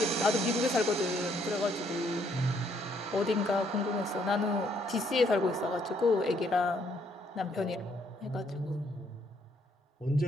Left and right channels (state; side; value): normal; both; correlation 0.69